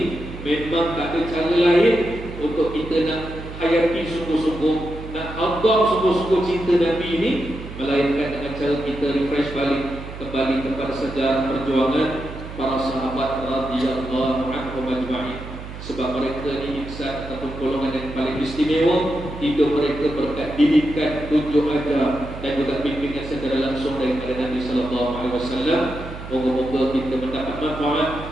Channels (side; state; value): right; noise; hum, 11 dB below the sound